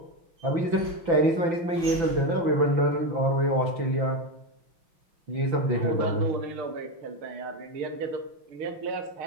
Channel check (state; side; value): late; left; 6.0 ms